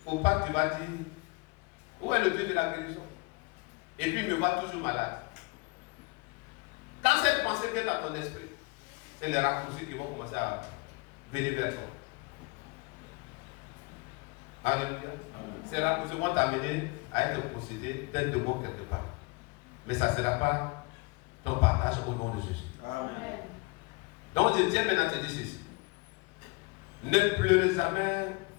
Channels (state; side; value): quieter; right; 26.8 dB